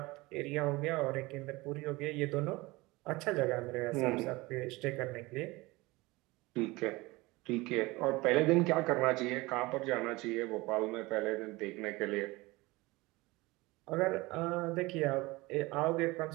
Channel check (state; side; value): quieter; left; 22.0 dB